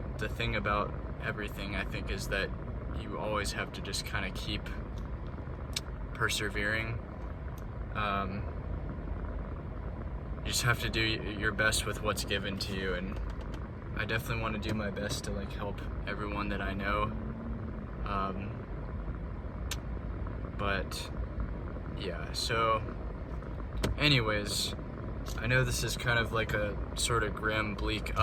the thing about everything, I think, is that you always have to just kind of keep persevering. You just have to do your best with what's given to you, and I definitely want to do my best to help everyone that I know. But yeah, so anyways, I know this is kind of like a sort of grim, bleak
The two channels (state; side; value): identical; both; correlation 1.00